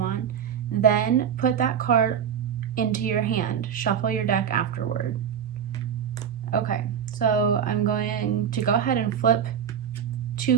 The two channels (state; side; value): quieter; left; 8.3 dB